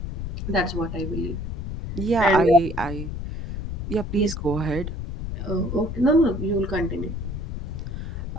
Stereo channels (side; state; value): left; noise; rumble, 6 dB below the sound